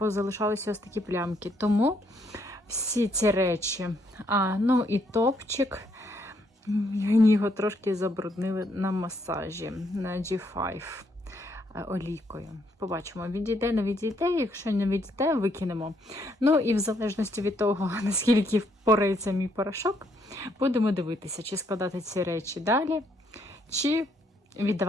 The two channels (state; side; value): normal; both; correlation 0.72